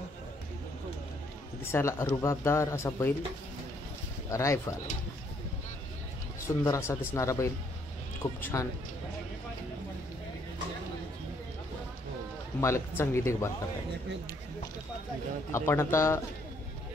दिसायला रुबाबदार असा बैल रायफल सुंदर असा दिसणारा बैल खूप छान मालक चांगली देखभाल करतात आपण आता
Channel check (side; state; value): both; normal; correlation 0.68